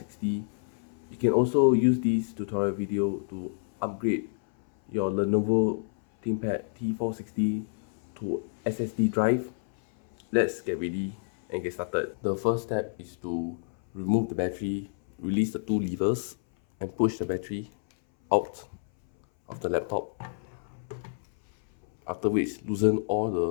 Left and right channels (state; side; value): silent; right; 59 dB below the other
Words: You can also use this tutorial video to upgrade your Lenovo Thinkpad T460 to SSD drive. Let's get ready and get started. The first step is to remove the battery, release the two levers, and push the battery out of the laptop. After which, loosen all